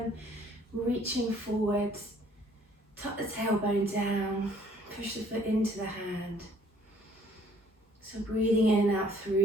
reaching forwards, tuck the tailbone down, push the foot into the hand. So breathing in and out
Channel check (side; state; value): both; normal; correlation 0.61